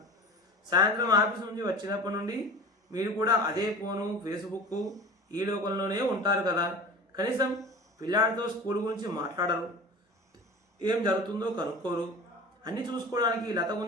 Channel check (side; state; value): both; normal; correlation 0.36